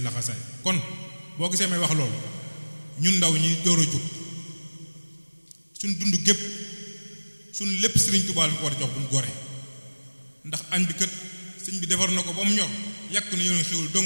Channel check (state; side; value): inverted; both; correlation -1.00